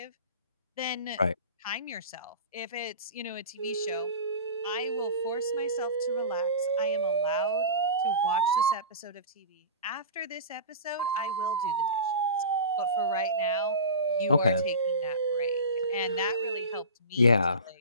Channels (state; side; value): inverted; both; correlation -0.31